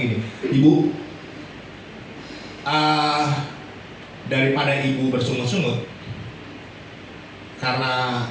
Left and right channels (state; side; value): identical; both; correlation 1.00